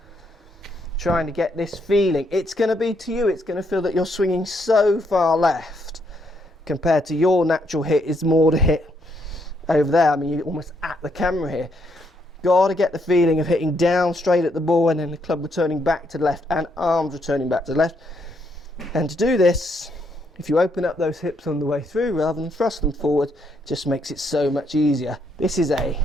trying to get this feeling. It's going to be to you, it's going to feel that you're swinging so far left compared to your natural hit is more to hit over there. I mean, you're almost at the camera here. Got to get the feeling of hitting down straight at the ball and then the club returning back to the left and arms returning back to the left. And to do this, if you open up those hips on the way through rather than thrust them forward, it just makes it so much easier. This is a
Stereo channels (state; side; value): normal; both; correlation 0.74